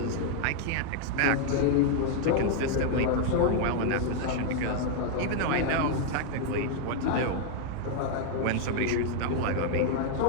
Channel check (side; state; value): both; different; correlation 0.00